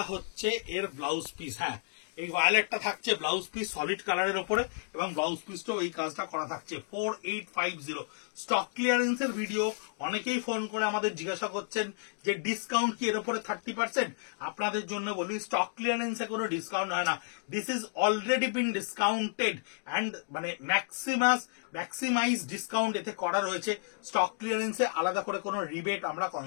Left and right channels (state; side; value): silent; right; digital silence